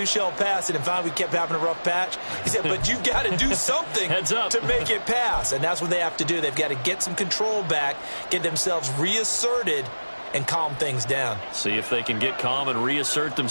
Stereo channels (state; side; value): inverted; both; correlation -1.00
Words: shall pass. And finally we kept having a rough patch. He said, but you've got to do something to make it pass. And that's what they have to do. They've got to get some control back, get themselves reasserted, and calm things down. See if they can get calm and reassert